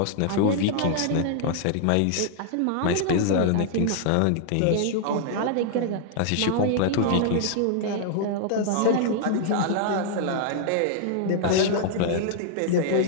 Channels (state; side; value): different; both; correlation -0.01